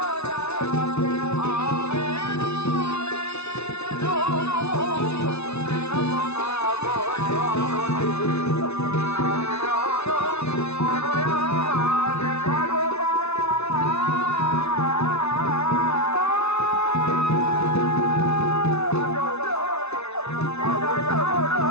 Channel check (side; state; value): right; late; 0.81 ms